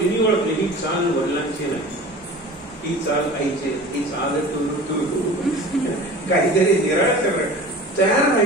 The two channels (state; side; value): normal; both; correlation 0.39